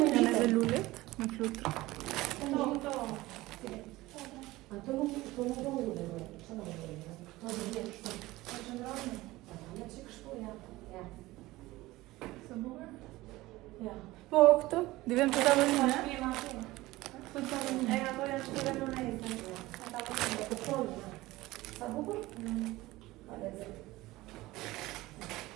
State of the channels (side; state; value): left; quieter; 18.7 dB